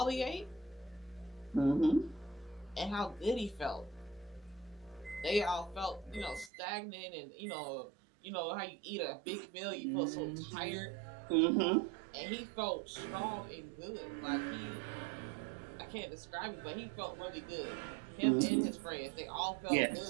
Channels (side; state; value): left; drops out; at 6.5 s